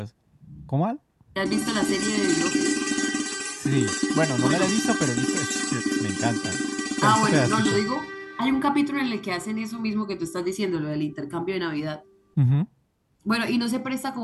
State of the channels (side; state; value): both; identical; correlation 1.00